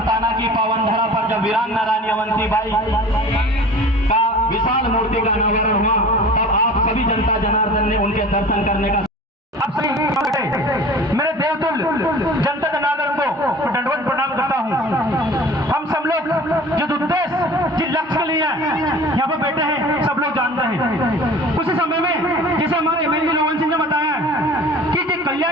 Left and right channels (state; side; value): normal; both; correlation 0.42